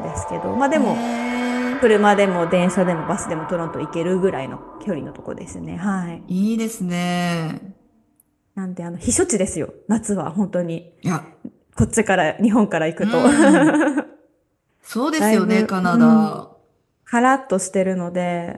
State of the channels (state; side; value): identical; both; correlation 1.00